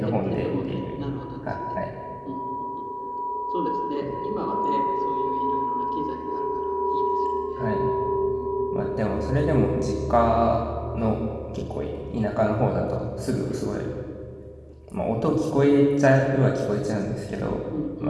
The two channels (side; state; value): both; identical; correlation 1.00